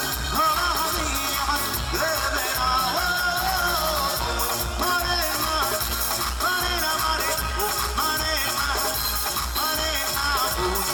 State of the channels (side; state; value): both; identical; correlation 1.00